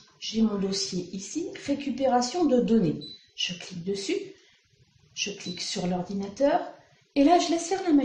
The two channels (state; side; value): identical; both; correlation 1.00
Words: J'ai mon dossier ici, récupération de données. Je clique dessus, je clique sur l'ordinateur et là, je laisse faire la